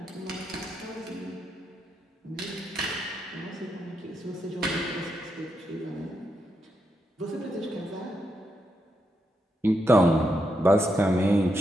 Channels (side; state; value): both; normal; correlation 0.82